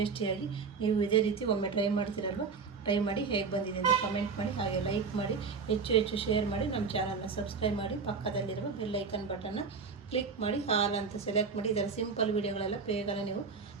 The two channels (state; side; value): quieter; left; 5.2 dB